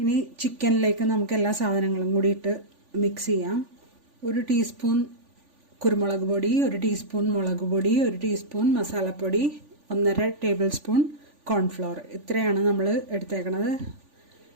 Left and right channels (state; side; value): late; left; 3.5 ms